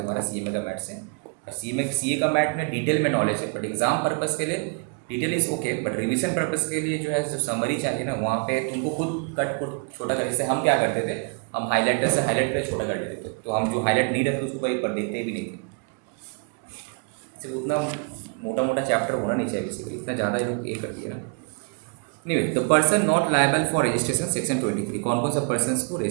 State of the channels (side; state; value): left; quieter; 38.4 dB